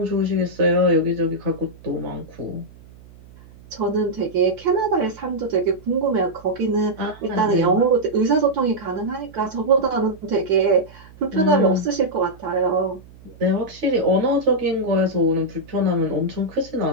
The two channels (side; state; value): right; noise; hum, 22 dB below the sound